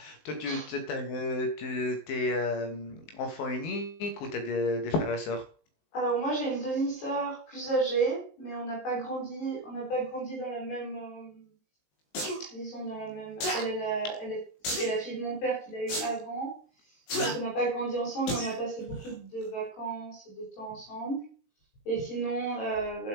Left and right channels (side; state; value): right; late; 19 ms